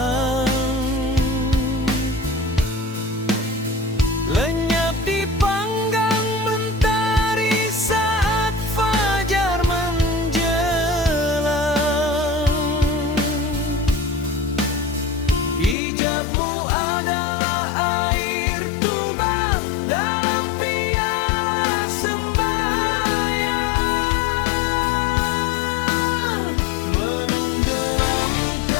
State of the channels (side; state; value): right; drops out; at 15.8 s